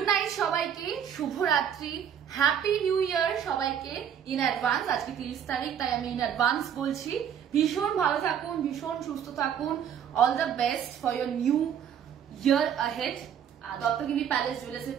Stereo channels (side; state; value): left; quieter; 8.7 dB